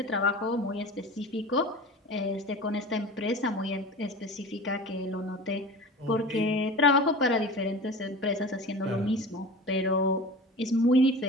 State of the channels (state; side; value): normal; both; correlation 0.35